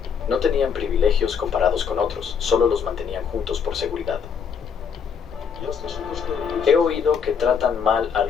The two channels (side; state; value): right; quieter; 6.8 dB